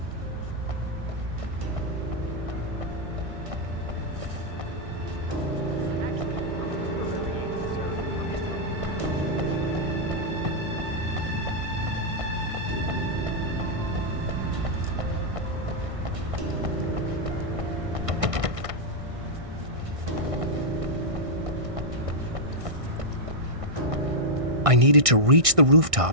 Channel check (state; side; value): late; left; 1.6 ms